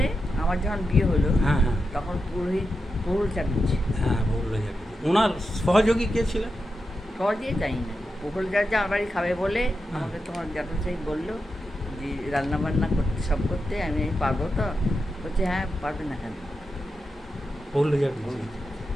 আমার যখন বিয়ে হলো, হ্যাঁ হ্যাঁ তখন পুরোহিত প্রহুল চাটুর্যে। হ্যাঁ, বললো যাবে। ওনার সহযোগী কে ছিলেন? সহজে জানি না, প্রহুল চাটুর্যে আমার বাড়ি খাবে বলে হ্যাঁ। আমাকে তোমার জ্যাঠামশাই বললো যে রান্না বান্না করতে সব করতে, আমি পারবো তো? বলছে হ্যাঁ পারবে না কেন। বললো যাবে।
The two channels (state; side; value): normal; both; correlation 0.89